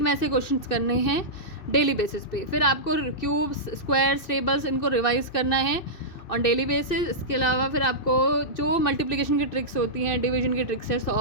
में से क्वेश्चंस करने हैं डेली बेसिस पे. फिर आपको क्यूब्स, स्क्वायर्स, टेबल्स इनको रिवाइज करना है ऑन डेली बेसिस. इसके अलावा फिर आपको जो मल्टीप्लिकेशन की ट्रिक्स होती हैं, डिवीजन की ट्रिक्स है,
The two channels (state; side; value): late; right; 2.6 ms